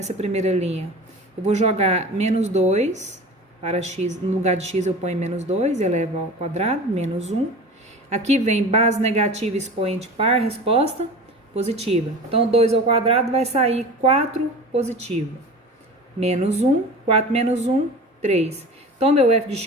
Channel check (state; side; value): normal; both; correlation 0.36